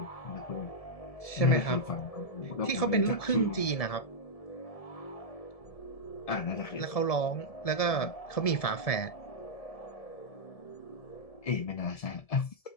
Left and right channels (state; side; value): late; right; 1.7 ms